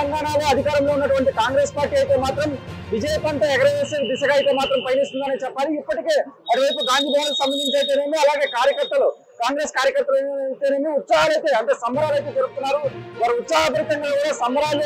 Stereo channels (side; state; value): both; identical; correlation 1.00